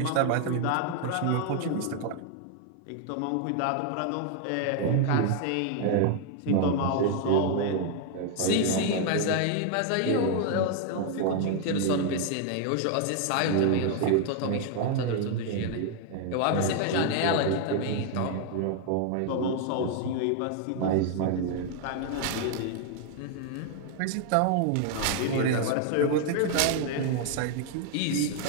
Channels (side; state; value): both; different; correlation 0.00